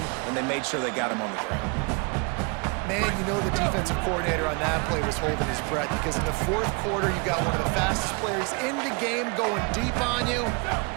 and they made sure they got him on the ground. Man, you know the defensive coordinator on that play was holding his breath because in the 4th quarter, you got one of the fastest players in the game going deep on you.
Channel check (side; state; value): left; quieter; 31.9 dB